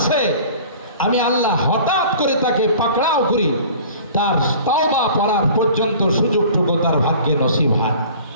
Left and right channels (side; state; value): both; inverted; correlation -0.45